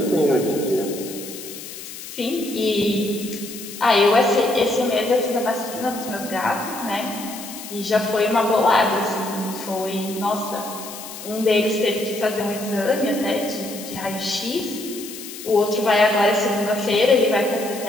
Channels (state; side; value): noise; left; hiss, 12 dB below the sound